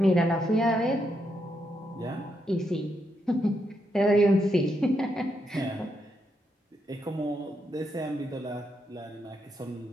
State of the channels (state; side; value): normal; both; correlation 0.80